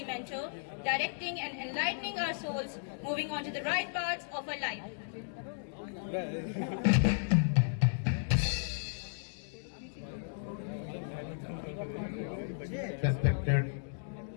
mentor, directing and enlightening our souls, moving on to the right paths of our life. Respected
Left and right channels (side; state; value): right; silent; digital silence